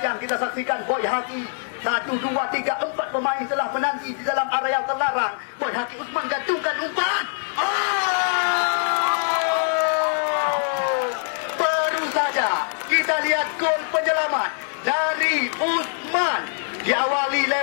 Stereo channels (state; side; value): silent; right; digital silence